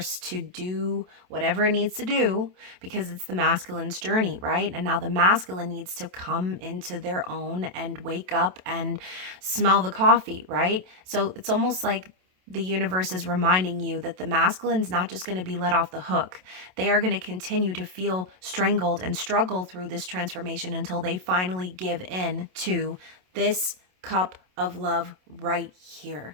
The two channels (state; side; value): late; left; 27 ms